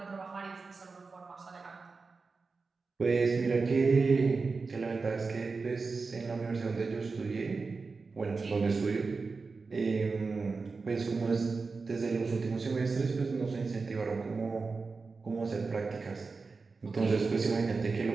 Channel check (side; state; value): left; quieter; 4.3 dB